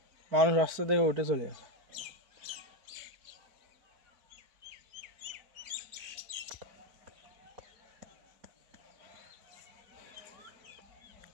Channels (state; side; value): late; left; 4.6 ms